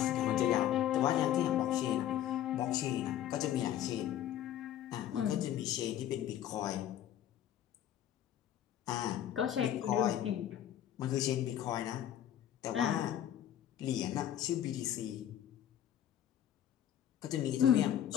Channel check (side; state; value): right; quieter; 11.1 dB